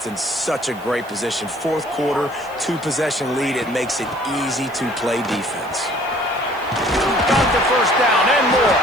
in such a great position. Fourth quarter, two-possession lead. It makes it easy to play defense. Got the first down and more.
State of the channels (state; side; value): noise; right; hiss, 24 dB below the sound